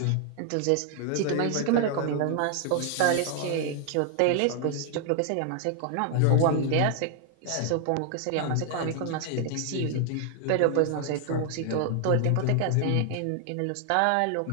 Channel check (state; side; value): different; both; correlation 0.00